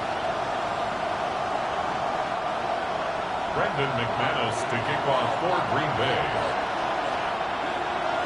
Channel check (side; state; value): both; identical; correlation 1.00